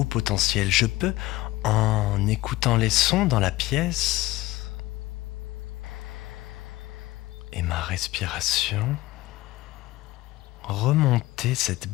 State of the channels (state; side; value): quieter; right; 18.0 dB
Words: potentiel. Je peux, en écoutant les sons dans la pièce et ma respiration, remonter cette